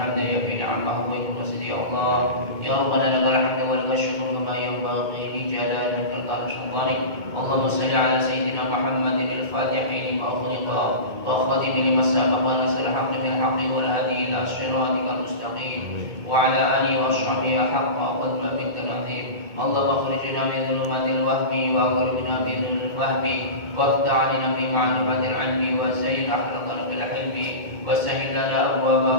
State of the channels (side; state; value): left; late; 2.2 ms